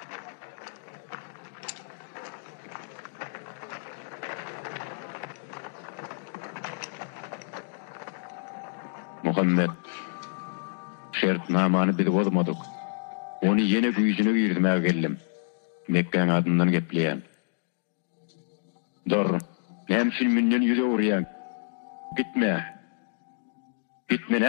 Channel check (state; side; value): silent; right; digital silence